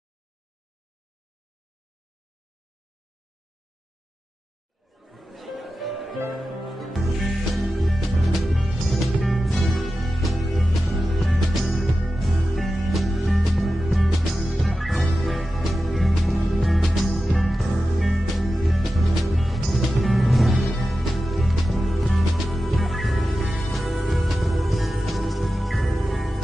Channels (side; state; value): both; normal; correlation 0.93